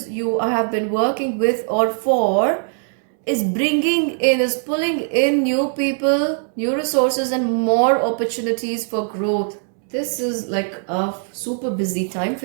you have been working with or for is pulling in new people, new resources, and more opportunities for growth. This is like a super busy time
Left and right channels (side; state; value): left; silent; 58 dB below the other